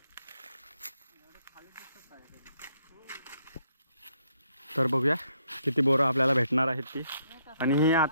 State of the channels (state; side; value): inverted; both; correlation -0.73